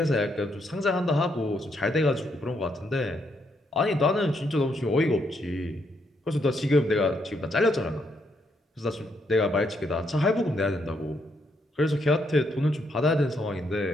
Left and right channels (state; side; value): normal; both; correlation 0.76